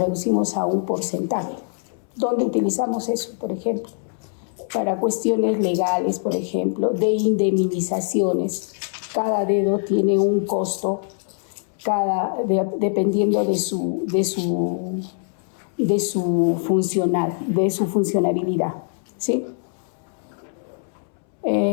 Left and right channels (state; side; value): silent; right; 63 dB below the other